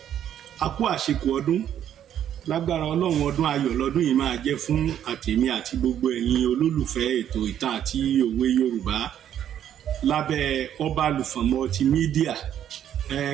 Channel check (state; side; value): quieter; left; 10.2 dB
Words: a kú àṣekù ọdún lágbára ọlọ́run ọdún ayọ̀ lọ́dún yìí máa jẹ́ fún àtèmi àti gbogbo ẹ̀yin olólùfẹ́ ètò ìtàn àti òwe Yorùbá lábẹ́ Ọbalùfọ̀n multimedia